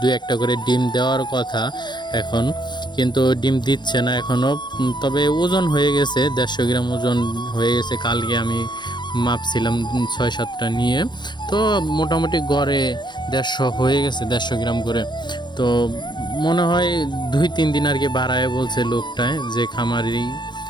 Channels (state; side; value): late; right; 0.21 ms